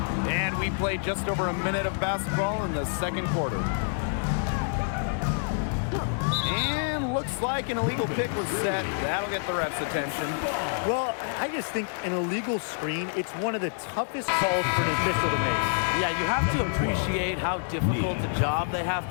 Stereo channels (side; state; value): right; silent; digital silence